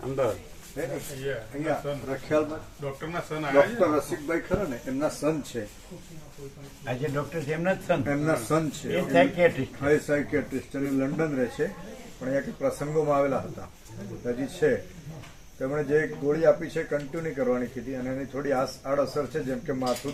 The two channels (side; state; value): both; identical; correlation 1.00